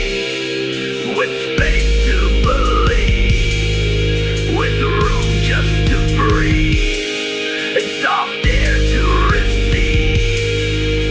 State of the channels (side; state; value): both; identical; correlation 1.00